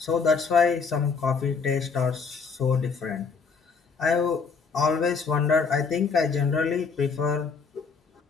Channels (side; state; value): right; quieter; 5.2 dB